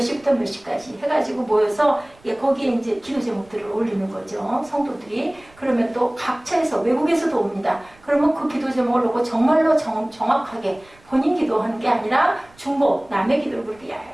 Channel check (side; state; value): right; noise; rumble, 28 dB below the sound